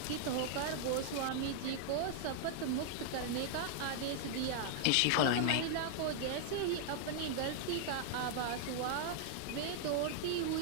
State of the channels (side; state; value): both; different; correlation -0.01